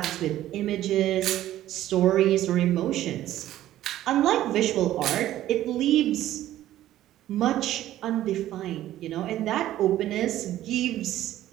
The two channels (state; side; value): quieter; left; 13.5 dB